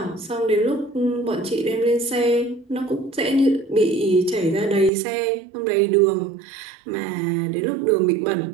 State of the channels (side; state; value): left; drops out; at 4.9 s